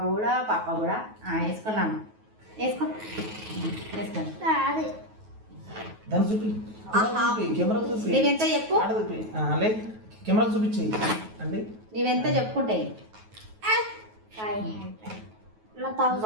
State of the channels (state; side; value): late; left; 9.3 ms